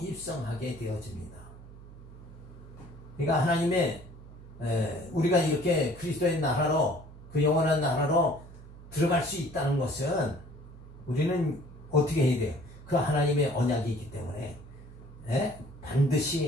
되어집니다. 그러니까 하나님의 우리가 이렇게 그리스도의 나라로, 그 영원한 나라로 들어갈 수 있다는 것은 우리는 어떻게 해야 돼요? 그 하나님의 언약이 있기 때문에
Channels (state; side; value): noise; right; hum, 17 dB below the sound